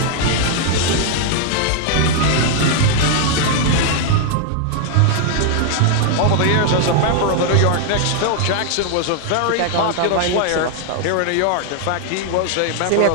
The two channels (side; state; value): both; different; correlation 0.00